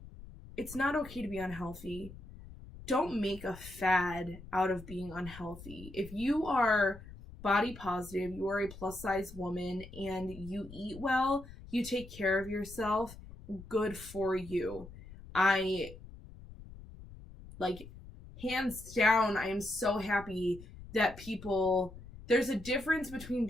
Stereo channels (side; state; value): left; noise; rumble, 16 dB below the sound